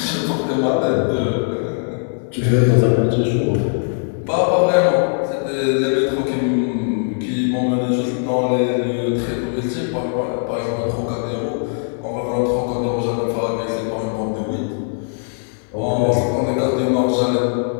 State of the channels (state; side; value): silent; right; 59 dB below the other